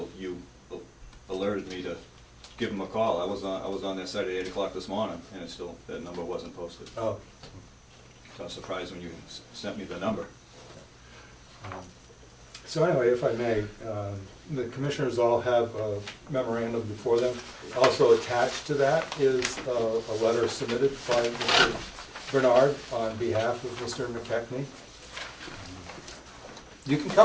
you alerted me to give them a call. I was on that site at 8 o'clock this morning, and it still, that number wasn't posted. Oh. So I was surprised when you sent me the number. So anyway, if I may, the commissioners all have a memorandum before them. Also attached to that is a letter submitted by Mr. Bernard on behalf of Mr. McKechnie. You can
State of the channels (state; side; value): identical; both; correlation 1.00